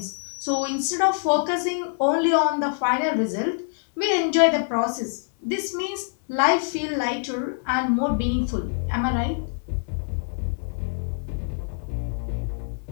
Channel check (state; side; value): silent; right; 62 dB below the other